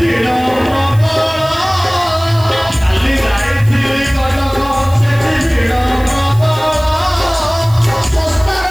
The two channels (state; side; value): noise; right; hiss, 20 dB below the sound